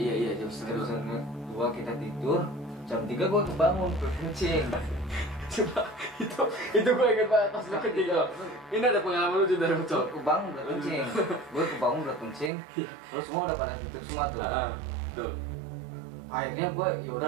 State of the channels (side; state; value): left; drops out; at 12.5 s